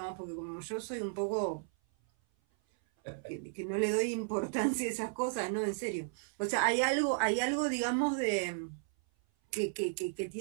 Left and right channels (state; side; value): silent; left; 55 dB below the other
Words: porque como yo soy un poco que no le doy importancia a esas cosas, no, en serio. O sea, hay algo, digamos, de que